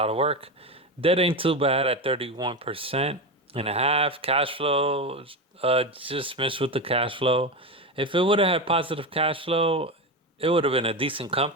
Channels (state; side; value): normal; both; correlation 0.17